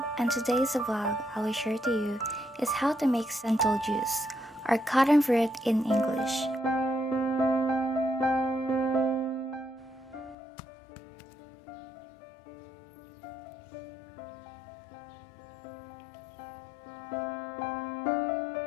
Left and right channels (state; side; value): drops out; right; at 10.4 s